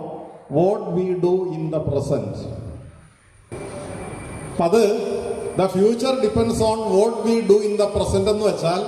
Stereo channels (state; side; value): identical; both; correlation 1.00